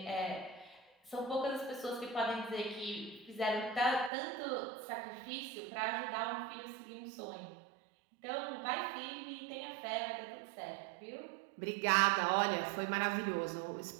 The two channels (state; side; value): drops out; left; at 4.1 s